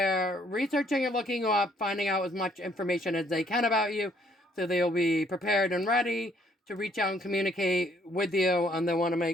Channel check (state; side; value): normal; both; correlation 0.65